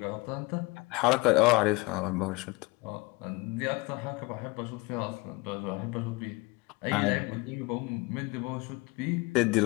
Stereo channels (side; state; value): right; quieter; 25.1 dB